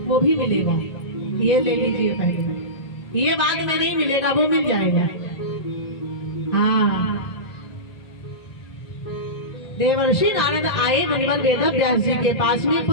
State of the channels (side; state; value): right; late; 1.5 ms